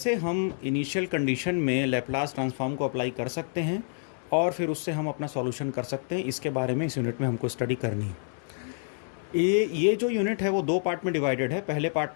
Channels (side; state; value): right; silent; digital silence